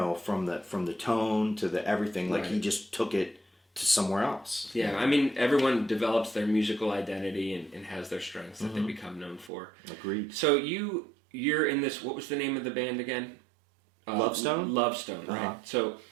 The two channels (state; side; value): drops out; left; at 9.5 s